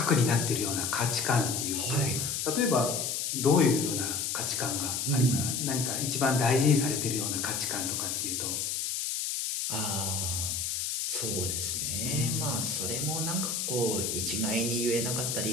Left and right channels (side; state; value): left; noise; hiss, 1 dB below the sound